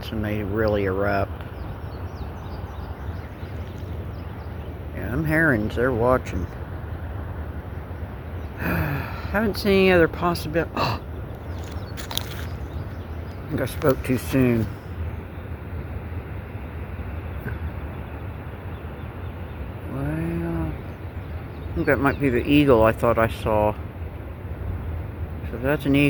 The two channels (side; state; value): both; identical; correlation 1.00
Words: when they really erupt. Yeah, them herons, they're watching. Haven't seen any other possibility. I think I spoke too soon. Well, I think that might be the eagle I thought I saw. So that's an